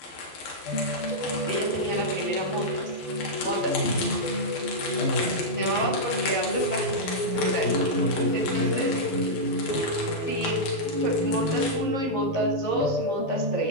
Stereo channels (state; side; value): late; right; 12 ms